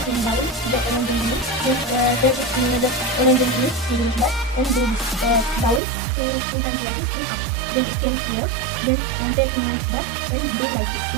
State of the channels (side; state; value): left; drops out; at 5.8 s